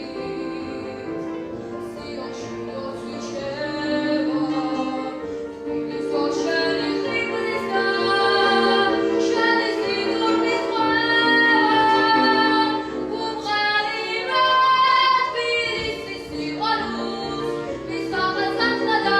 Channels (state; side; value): identical; both; correlation 1.00